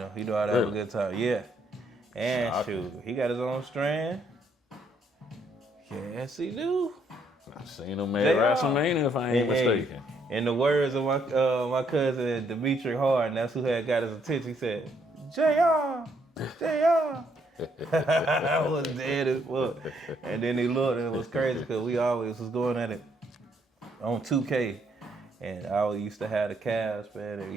know how to have a good time. Yeah. And shoot, he got his own strand. Yes, he do. I've seen him at WrestleMania, if I ain't mistaken. In the words of my cousin Dimitri Hard, and that's who had got his attention. He said, J.R. I was dead as fuck. And then he looked, and it was crazy because we always was going at it on 2K. And I used to have the Cavs, man, and,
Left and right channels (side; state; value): both; normal; correlation 0.71